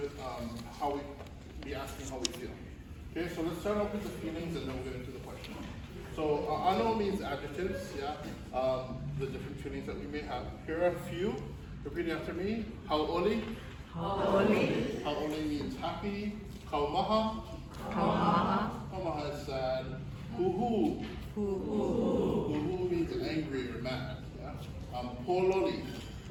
how we be asking how we feel. Okay, so let's start off with the feelings and then we'll get into the question. So ʻAʻano means adjectives, yeah. The different feelings that we may have. Here are a few. Repeat after me. Hauʻoli. Hauʻoli. Hauʻoli means happy. Kaumaha. Kaumaha. Kaumaha is sad. Huhu. Huhu means angry or mad. Yeah. Pololi.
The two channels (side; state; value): both; identical; correlation 1.00